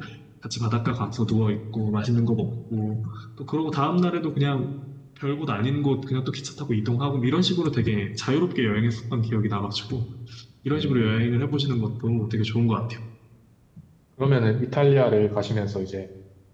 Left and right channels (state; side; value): identical; both; correlation 1.00